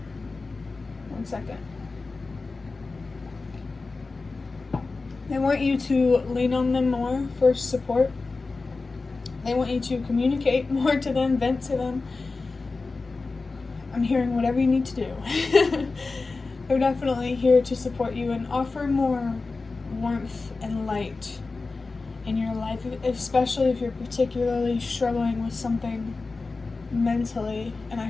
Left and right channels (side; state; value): right; quieter; 3.8 dB